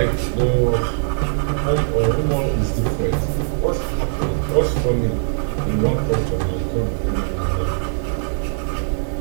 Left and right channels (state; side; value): silent; left; digital silence